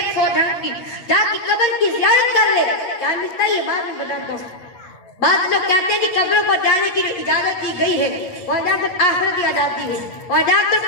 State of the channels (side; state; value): right; late; 8.3 ms